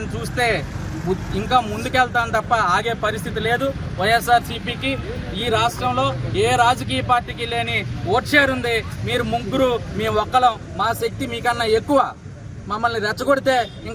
చూస్తే ఇంకా ముందుకెళ్తాం తప్ప ఆగే పరిస్థితి లేదు. వైఎస్ఆర్సీపీకి ఈ రాష్ట్రంలో ఏ రాజకీయ పార్టీకి లేని ఓట్ షేర్ ఉంది. మీరు ముగ్గురు, మీ ఒక్కలం, మా శక్తి మీకన్నా ఎక్కువ. మమ్మల్ని రెచ్చగొడితే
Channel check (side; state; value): both; identical; correlation 1.00